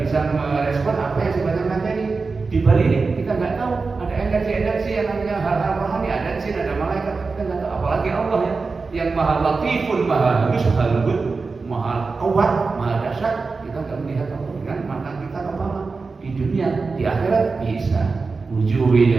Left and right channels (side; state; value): left; quieter; 4.3 dB